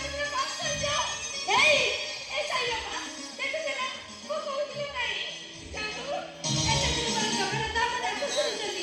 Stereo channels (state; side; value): identical; both; correlation 1.00